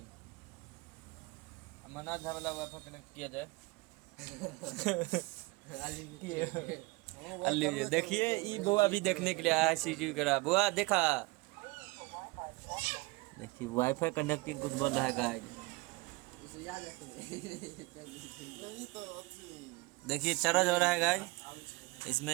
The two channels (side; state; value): left; quieter; 24.4 dB